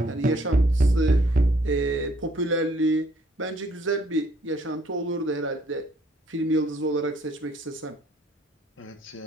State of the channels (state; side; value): normal; both; correlation 0.64